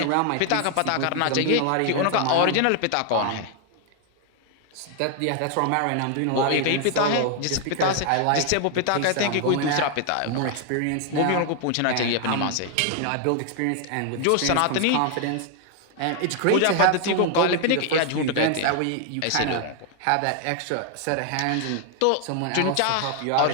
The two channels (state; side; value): different; both; correlation 0.00